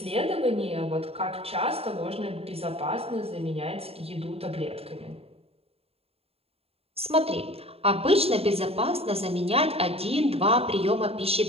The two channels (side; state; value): left; late; 0.29 ms